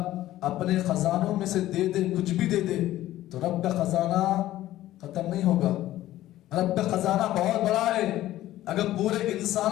اپنے خزانوں میں سے دے دے, کچھ بھی دے دے, تو رب کا خزانہ ختم نہیں ہوگا. رب کا خزانہ بہت بڑا ہے. اگر پورے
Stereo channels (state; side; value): quieter; right; 14.6 dB